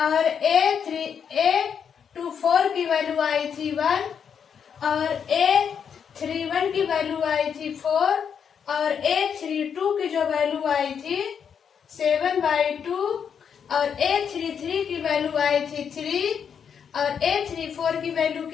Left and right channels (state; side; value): quieter; right; 7.4 dB